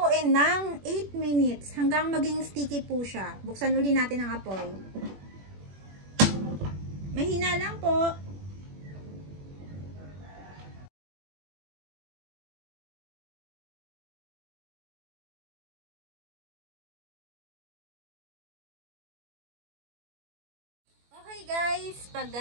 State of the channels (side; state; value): left; late; 21 ms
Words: ng 8 minutes hanggang maging sticky po siya. Buksan uli natin ang apoy. Mahina lang po. Okay guys, pag